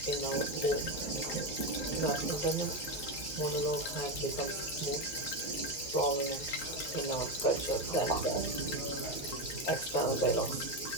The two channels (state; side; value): late; right; 11 ms